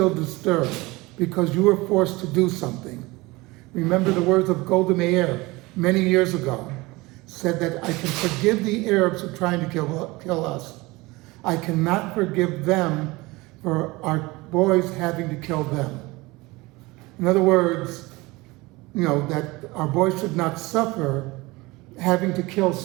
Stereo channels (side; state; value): left; quieter; 22.3 dB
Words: disturbed because you were forced to do something. Remember the words of Golda Meir many years ago, said that I can forgive the Arabs who are trying to kill us. I cannot forgive them for our boys having to kill them. In other words, that our boys should not suffer having to kill